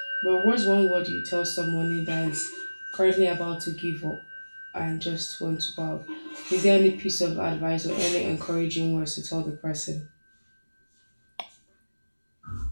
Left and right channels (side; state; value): both; inverted; correlation -1.00